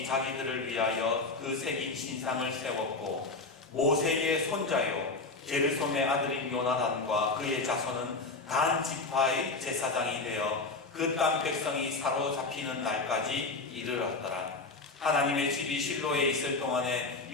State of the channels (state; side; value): quieter; right; 3.6 dB